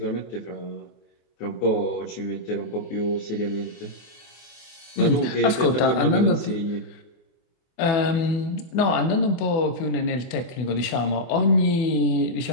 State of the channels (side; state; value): right; late; 24 ms